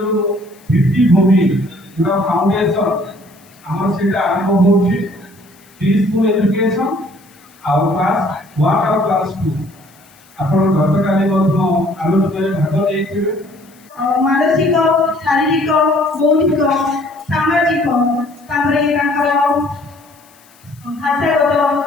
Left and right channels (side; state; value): left; noise; hiss, 29 dB below the sound